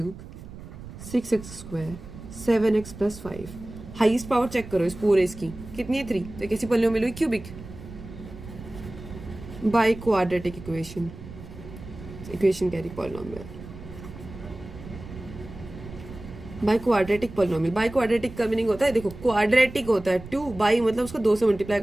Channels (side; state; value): right; noise; rumble, 14 dB below the sound